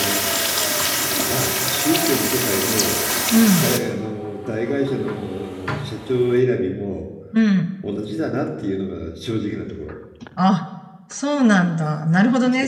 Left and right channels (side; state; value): both; identical; correlation 1.00